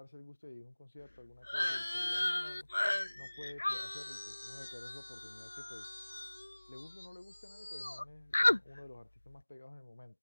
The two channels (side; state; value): both; inverted; correlation -1.00